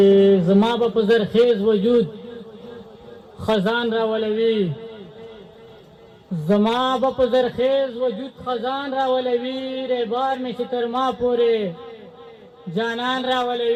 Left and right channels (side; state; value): both; identical; correlation 1.00